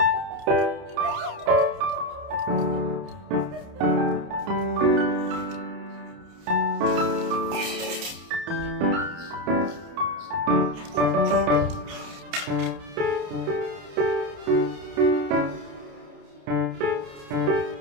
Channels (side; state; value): left; late; 29 ms